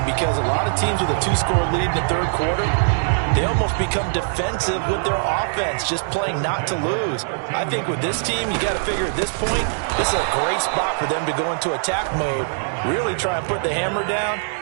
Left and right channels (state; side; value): silent; left; digital silence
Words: because a lot of teams with a 2-score lead in the third quarter, they almost become defensive with their offense, just playing not to lose. I think with this team, you got to figure at this point, this is a great spot for them to go into attack mode, really try and put the hammer down